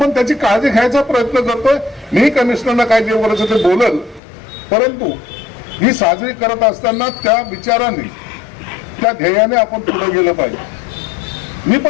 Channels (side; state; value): right; drops out; at 4.2 s